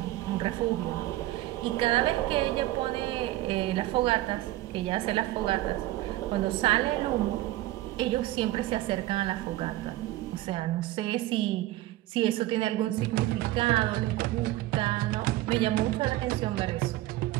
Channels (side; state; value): left; quieter; 16.3 dB